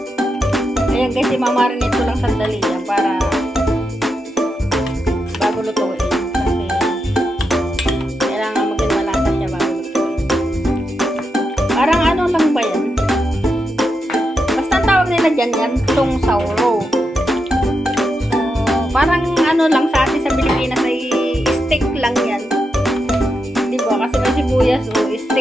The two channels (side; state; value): both; normal; correlation 0.85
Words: Ayan guys, imamarinate ko lang sandali yan para bago lutuin. Kasi kailangan maging malasa siya bago lutuin. Parang ano lang ba yan? Basta ang tawag nila dyan yan, tong sauro. So, parang ano lang sa atin sa Pilipinas ay stick lang yan. Diba? Kasi may sibuyas o